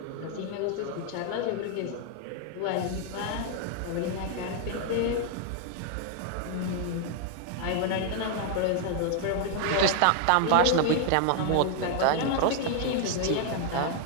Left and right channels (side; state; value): both; different; correlation 0.00